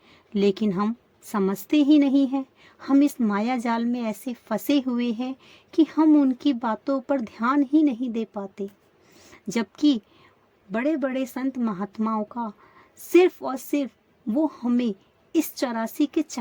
लेकिन हम समझते ही नहीं हैं। हम इस माया जाल में ऐसे फंसे हुए हैं कि हम उनकी बातों पर ध्यान ही नहीं दे पाते, जबकि बड़े बड़े संत महात्माओं का सिर्फ और सिर्फ वो हमें इस 84 के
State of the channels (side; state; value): both; identical; correlation 1.00